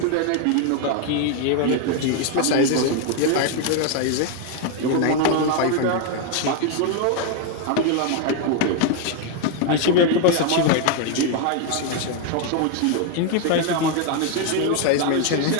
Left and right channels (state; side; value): different; both; correlation 0.01